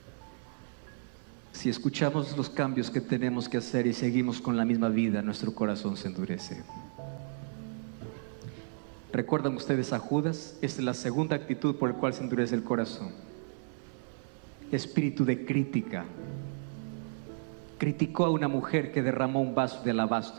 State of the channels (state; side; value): silent; left; 56 dB below the other